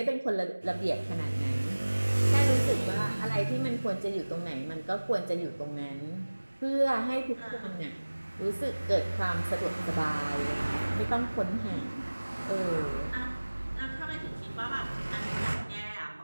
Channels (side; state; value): both; inverted; correlation -1.00